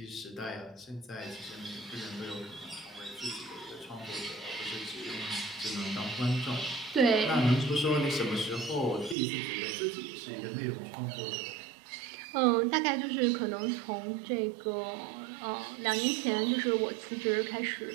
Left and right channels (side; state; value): left; drops out; at 9.2 s